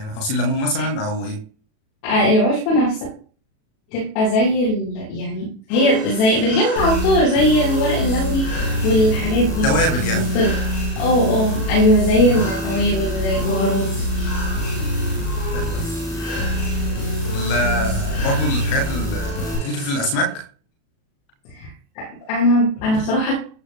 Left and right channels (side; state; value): right; late; 37 ms